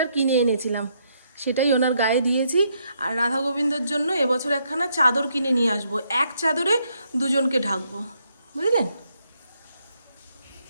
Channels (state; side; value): inverted; both; correlation -0.75